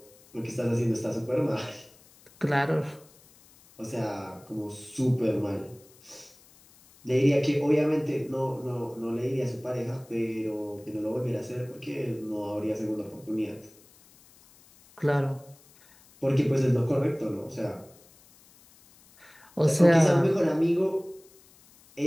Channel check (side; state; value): left; noise; hiss, 27 dB below the sound